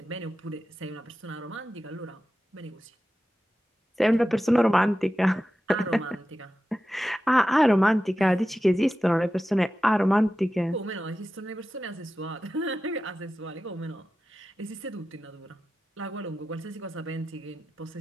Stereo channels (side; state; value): both; normal; correlation 0.93